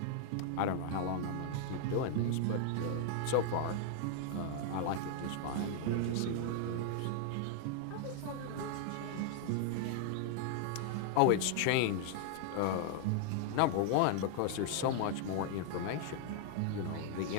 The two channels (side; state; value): both; different; correlation 0.00